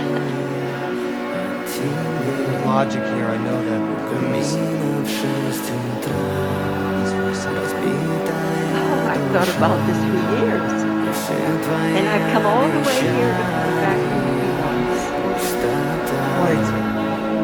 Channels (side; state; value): both; identical; correlation 1.00